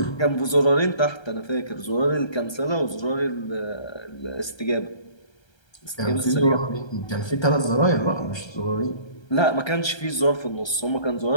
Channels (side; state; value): right; late; 1.3 ms